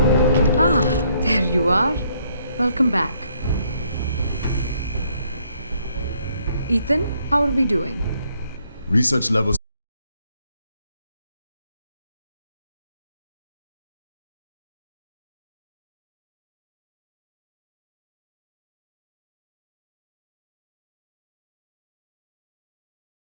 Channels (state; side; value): inverted; both; correlation -0.70